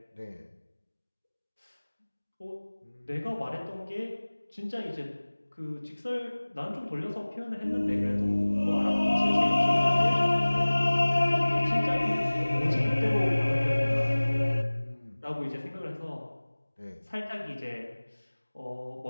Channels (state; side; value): inverted; both; correlation -1.00